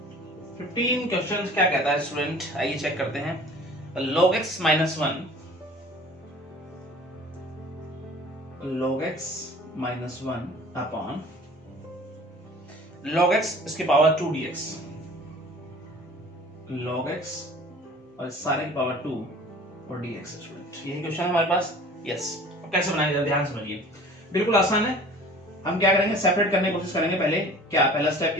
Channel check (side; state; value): both; normal; correlation 0.46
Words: क्वेश्चन क्या कहता है स्टूडेंट, आइए चेक करते हैं। log x minus 1 log x minus 1 upon log x इसकी पावर 2 dx, log x और सारे की पावर 2 और dx स्टूडेंट, यही क्वेश्चन है हमारे पास, यस। अब कैसे बनाएंगे ध्यान समझिए, बिल्कुल आसान है। हम क्या करेंगे, सेपरेट करने की कोशिश करेंगे पहले, क्या पहला स्टेप